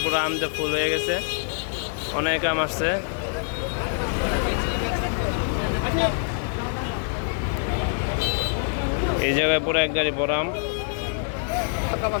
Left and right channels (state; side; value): silent; right; digital silence